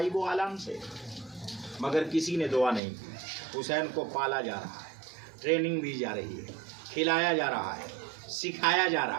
و عالم سے۔ مگر کسی نے دعا نہیں کی۔ حسین کو پالا جا رہا ہے، ٹریننگ دی جا رہی ہے، کھلایا جا رہا ہے، سکھایا جا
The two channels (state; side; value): drops out; left; at 2.8 s